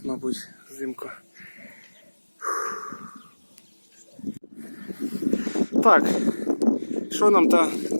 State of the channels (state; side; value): inverted; both; correlation -1.00